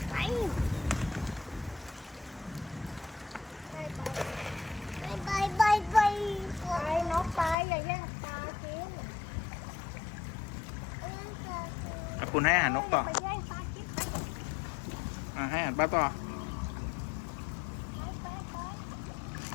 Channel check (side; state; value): right; drops out; at 7.6 s